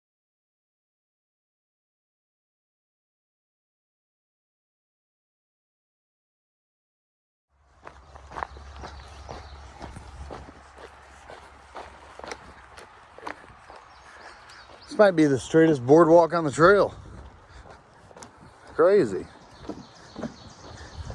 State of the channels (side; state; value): both; identical; correlation 1.00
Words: This might be the straightest boardwalk on the trail. Crazy.